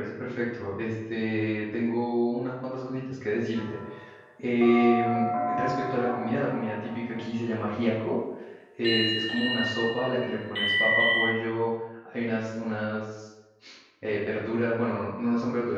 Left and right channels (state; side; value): identical; both; correlation 1.00